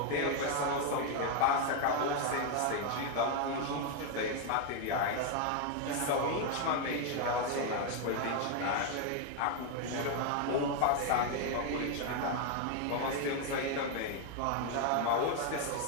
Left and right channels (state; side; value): different; both; correlation 0.01